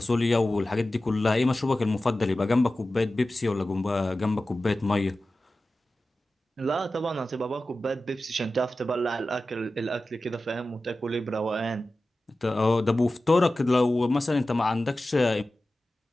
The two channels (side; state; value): both; normal; correlation 0.95